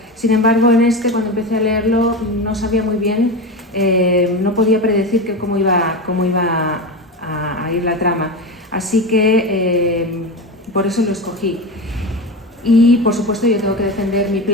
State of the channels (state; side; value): normal; both; correlation 0.21